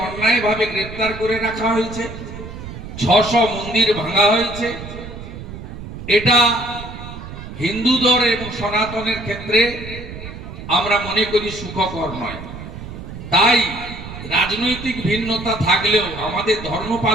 অন্যায়ভাবে গ্রেপ্তার করে রাখা হয়েছে, 600 মন্দির ভাঙা হয়েছে। এটা হিন্দুদের এবং সনাতনের ক্ষেত্রে আমরা মনে করি সুখকর নয়। তাই রাজনৈতিক ভিন্নতা থাকলেও আমাদের ধর্ম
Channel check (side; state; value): right; noise; rumble, 11 dB below the sound